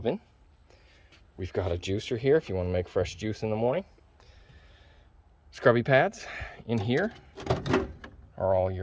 We've got a juicer here if you want to make fresh juice in the morning. Scrubby pads. In here are all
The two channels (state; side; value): identical; both; correlation 1.00